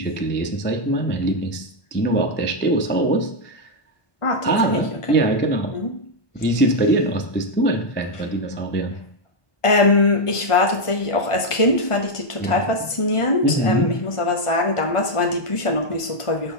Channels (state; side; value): late; right; 1.4 ms